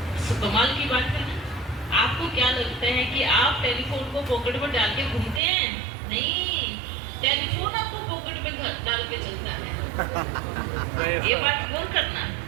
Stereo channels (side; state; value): left; drops out; at 5.4 s